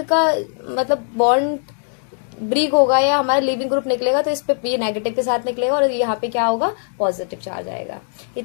का मतलब बॉन्ड ब्रिक होगा या हमारा लिविंग ग्रुप निकलेगा, तो इस पे ये नेगेटिव के साथ निकलेगा और यहाँ पे क्या होगा, पॉजिटिव चार्ज आएगा।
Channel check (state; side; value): silent; right; digital silence